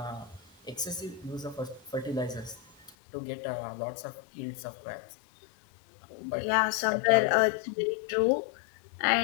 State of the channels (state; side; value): drops out; right; at 2.9 s